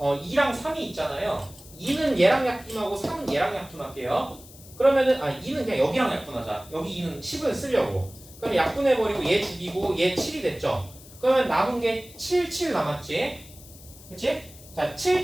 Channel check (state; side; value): noise; left; hiss, 20 dB below the sound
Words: 3이 있잖아요. 2는 얘랑 약분하고 3은 얘랑 약분할게요. 그러면은 2는 그냥 여기랑 약분하자. 여기 2는 10을 쓰려고. 그럼 약분해버리고 얘 죽이고 얘 7이 됐죠. 그러면 남은 게 7, 7 남았지. 그치? 자 7,